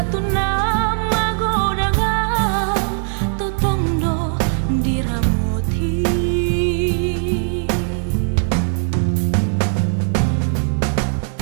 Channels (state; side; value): silent; left; digital silence